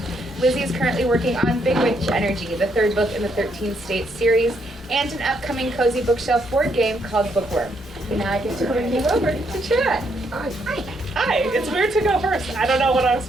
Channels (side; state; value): both; normal; correlation 0.74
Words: Lizzie is currently working on Big Witch Energy, the 3rd book in the 13 States series, and an upcoming cozy bookshelf board game called Bookworm. And now I get to bring you over to chat. Hi. Hi, it's weird to go first. I don't know what I'm